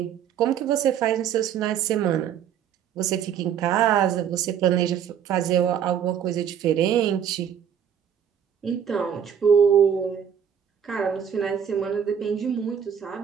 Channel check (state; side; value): quieter; left; 8.5 dB